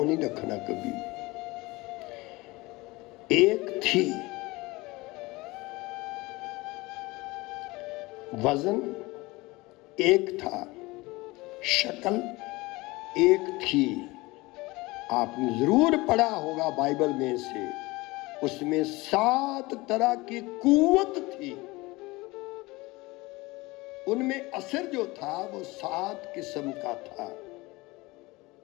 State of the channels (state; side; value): quieter; right; 22.2 dB